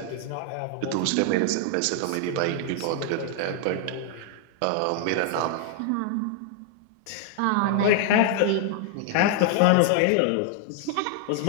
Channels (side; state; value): both; different; correlation 0.00